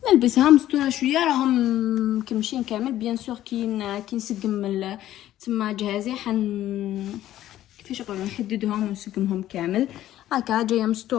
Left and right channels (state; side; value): quieter; right; 13.2 dB